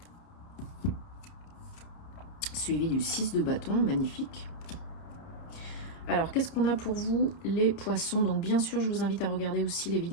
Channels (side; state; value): right; late; 30 ms